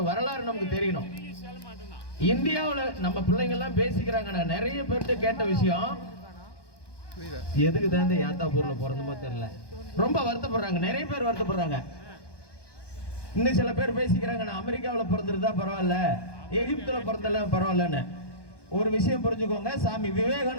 வரலாறு நமக்கு தெரியணும். இந்தியாவில் நம்ம பிள்ளைங்க எல்லாம் பேசிக்கிறாங்க. நான் நிறைய பேர்கிட்ட கேட்ட விஷயம், எதுக்கு தான் இந்த ஏத்தாப்பூர்ல பிறந்தமோ தெரியல, ரொம்ப வருத்தப்படுறாங்க. நிறைய பேர் வருத்தப்படுறாங்க. இன்னும் சில பேர் பேசிக்கிறாங்க, நான் அமெரிக்காவில் பிறந்திருந்தா பரவாயில்ல, எகிப்துல பிறந்தல பரவாயில்லன்னு. ஒரு விஷயம் புரிஞ்சுக்கோங்க, சாமி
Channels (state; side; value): late; right; 1.2 ms